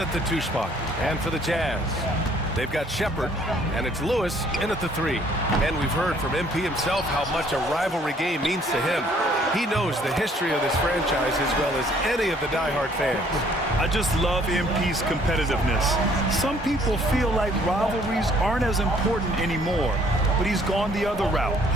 the 2 spot. And for the Jazz, they've got Shepherd, and it's Lewis in at the 3. And we've heard from MP himself how much a rivalry game means to him. He knows the history of this franchise as well as any of the diehard fans. I just love MP's competitiveness. Some people feel like rivalries aren't as important anymore, but he's gone the other route.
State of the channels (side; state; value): both; normal; correlation 0.61